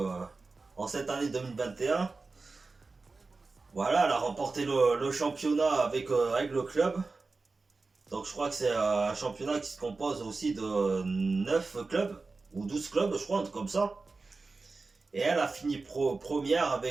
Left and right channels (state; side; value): quieter; left; 3.9 dB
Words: en cette année 2021. Voilà, elle a remporté le championnat avec le club. Donc je crois que c'est un championnat qui se compose aussi de 9 clubs, ou 12 clubs, je crois, un truc comme ça. Et elle a fini première